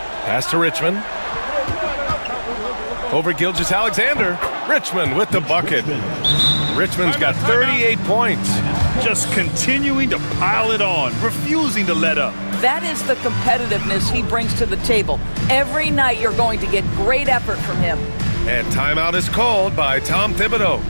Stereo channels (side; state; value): both; inverted; correlation -1.00